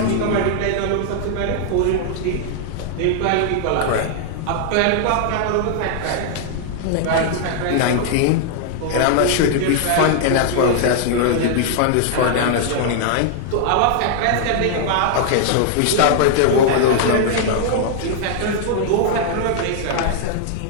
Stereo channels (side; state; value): both; different; correlation -0.01